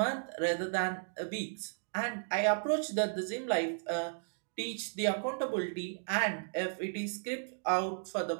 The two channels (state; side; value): silent; left; digital silence